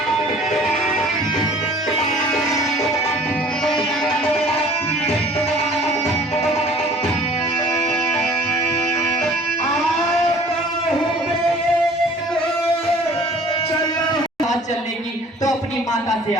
चलने की तो अपनी माता से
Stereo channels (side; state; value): both; normal; correlation 0.50